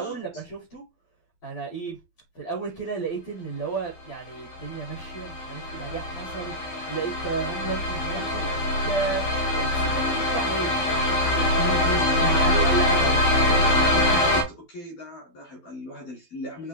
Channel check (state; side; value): late; right; 12 ms